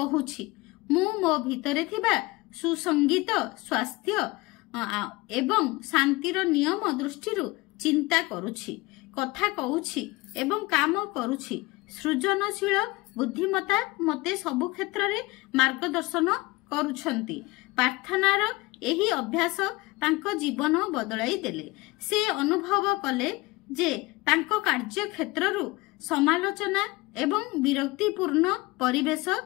ମୁଁ ମୋ ଭିତରେ ଥିବା ସୁସଙ୍ଗୀତ, ସ୍ୱାସ୍ଥ୍ୟ ଏବଂ ଶାନ୍ତିର ନିୟମ ଦୃଷ୍ଟିରୁ ଚିନ୍ତା କରୁଛି, କଥା କହୁଛି ଏବଂ କାମ କରୁଛି। ସୃଜନଶୀଳ ବୁଦ୍ଧିମତ୍ତା ମୋତେ ସବୁ କ୍ଷେତ୍ରରେ ମାର୍ଗଦର୍ଶନ କରୁଛନ୍ତି। ପ୍ରାର୍ଥନାର ଏହି ଅଭ୍ୟାସ ତାଙ୍କ ଜୀବନ ବଦଳାଇ ଦେଲେ। ସେ ଅନୁଭବ କଲେ ଯେ ତାଙ୍କ କାର୍ଯ୍ୟକ୍ଷେତ୍ରରୁ ସମାଲୋଚନା ଏବଂ ବିରକ୍ତିପୂର୍ଣ୍ଣ ପରିବେଶ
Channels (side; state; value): right; quieter; 22.1 dB